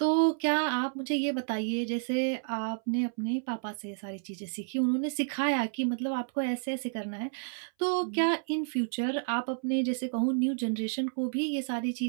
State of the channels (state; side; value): silent; left; 57 dB below the other